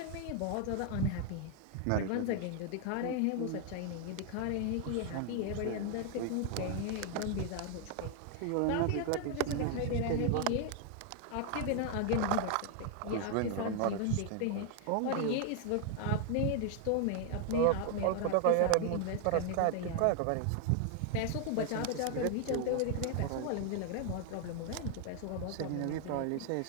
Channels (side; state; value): both; different; correlation 0.00